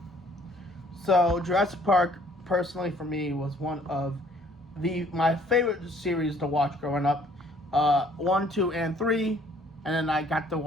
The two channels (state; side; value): normal; both; correlation 0.60